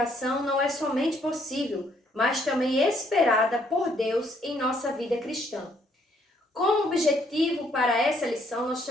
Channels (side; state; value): both; normal; correlation 0.68